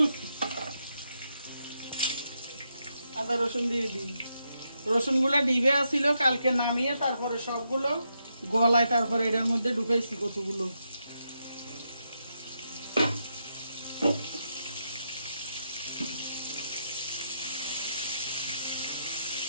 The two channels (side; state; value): both; inverted; correlation -0.82